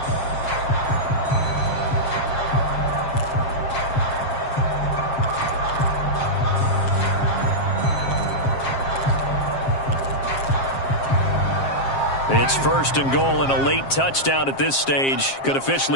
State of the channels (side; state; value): right; late; 7.5 ms